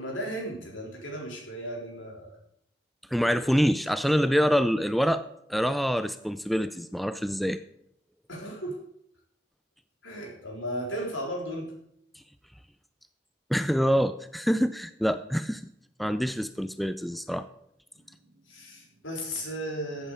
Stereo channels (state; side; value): normal; both; correlation 0.89